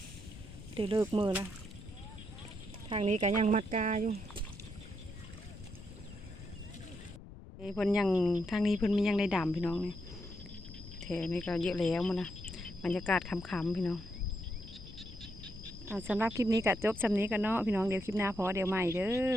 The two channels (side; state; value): left; noise; rumble, 15 dB below the sound